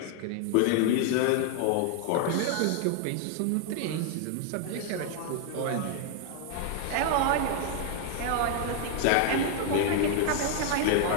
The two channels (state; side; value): different; both; correlation 0.00